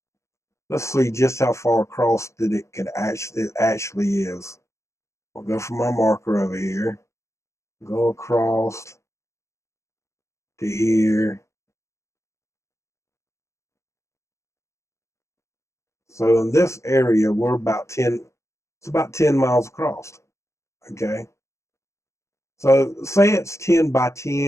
Let's see just how far across that it actually is. We'll go from our marker over here, go across to here. So in this area, we're about 10, it's about 10 miles across. Okay. So say it's 10 by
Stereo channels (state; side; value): late; right; 0.14 ms